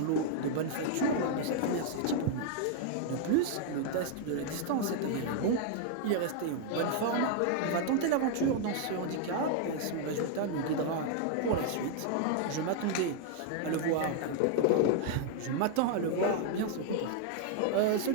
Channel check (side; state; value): both; different; correlation 0.00